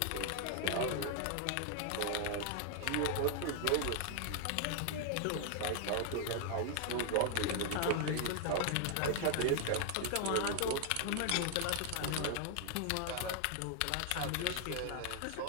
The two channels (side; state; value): both; different; correlation 0.00